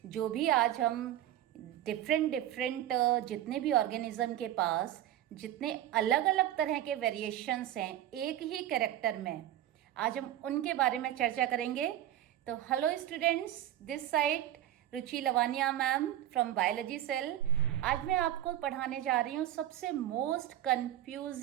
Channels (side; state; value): left; quieter; 12.6 dB